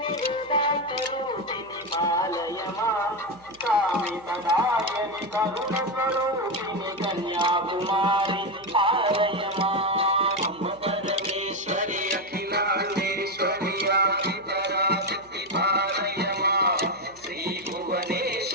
కామితదాయని కరుణ స్వరూపిణి కన్యాకుమారి పాలయమా అంబ పరమేశ్వరి అఖిలాండేశ్వరి ఆది పరాశక్తి పాలయమా శ్రీ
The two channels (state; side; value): noise; right; hum, 28 dB below the sound